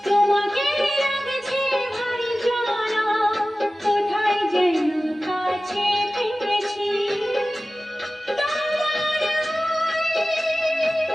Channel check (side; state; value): both; normal; correlation 0.96